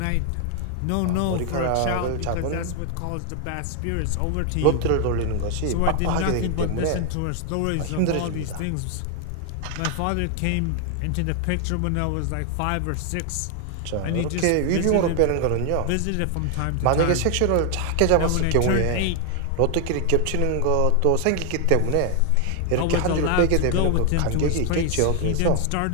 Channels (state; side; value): different; both; correlation 0.00